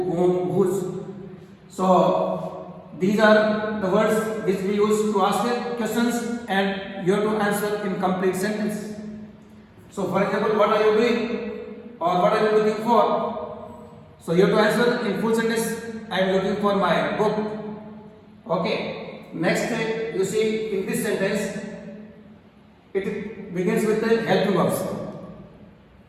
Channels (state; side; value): identical; both; correlation 1.00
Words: whom, whose. So these are the words which we use to ask questions and you have to answer in complete sentence. So for example, what are you doing or what are you looking for? So you have to answer in full sentence. I am looking for my book. Okay. Next you see in this sentence it begins with the helping verbs